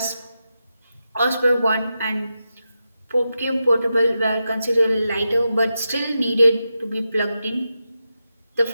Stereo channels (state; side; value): inverted; both; correlation -0.89